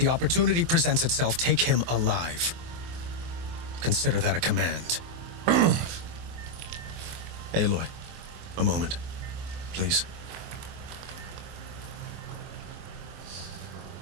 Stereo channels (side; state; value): left; late; 24 ms